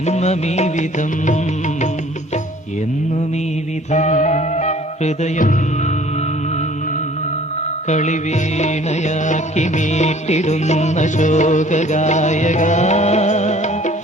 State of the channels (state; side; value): normal; both; correlation 0.53